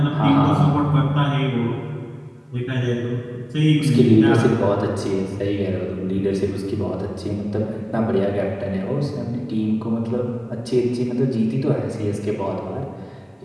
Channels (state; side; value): identical; both; correlation 1.00